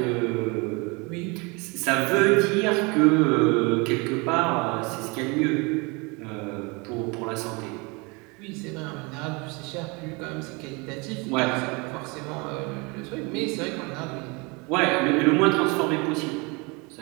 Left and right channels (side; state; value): left; quieter; 28.4 dB